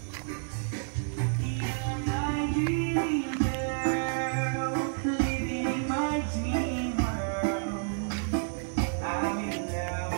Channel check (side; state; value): left; silent; digital silence